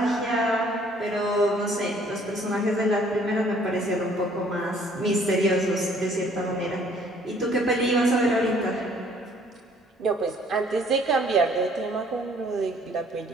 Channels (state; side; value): normal; both; correlation 0.59